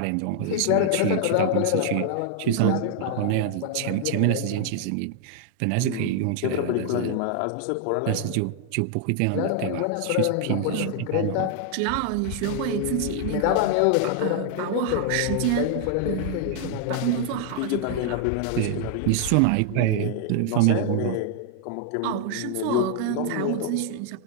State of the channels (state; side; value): different; both; correlation 0.00